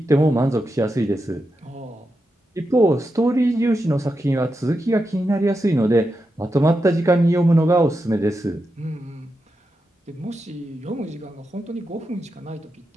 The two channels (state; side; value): normal; both; correlation 0.87